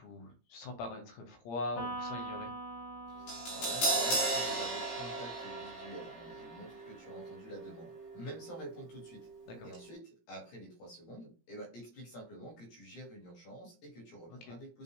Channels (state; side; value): late; right; 17 ms